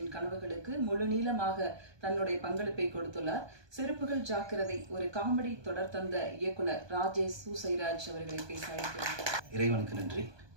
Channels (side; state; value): left; late; 1.2 ms